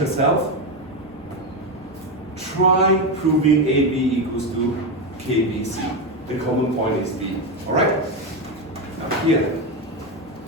try proving AB equals to KBC. The common point is B. Alright? Now here,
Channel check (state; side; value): normal; both; correlation 0.12